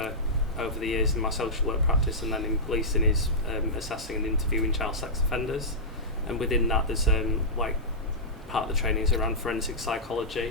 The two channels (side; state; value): both; normal; correlation -0.13